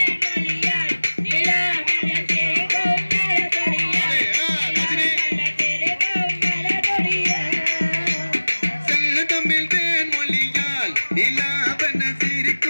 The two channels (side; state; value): both; inverted; correlation -1.00